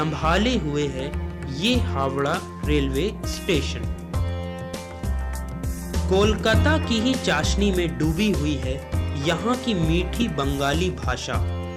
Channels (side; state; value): both; identical; correlation 1.00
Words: हुए है ये हावड़ा रेलवे स्टेशन। कोलकाता की ही चाशनी में डूबी हुई है यहाँ की मीठी बंगाली भाषा,